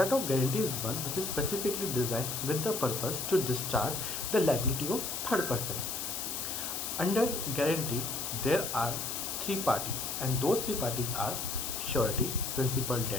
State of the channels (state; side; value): noise; left; hiss, 3 dB below the sound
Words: of guarantee is one which is specifically designed with the purpose to discharge the liability of third person. Under guarantee, there are three parties and those three parties are surety, principal